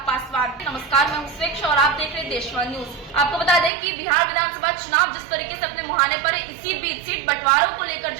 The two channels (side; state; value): left; drops out; at 3.7 s